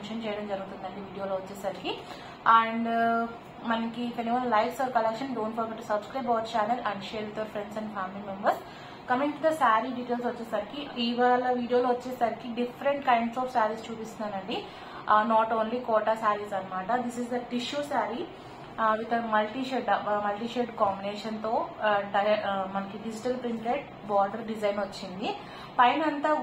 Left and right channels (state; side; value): identical; both; correlation 1.00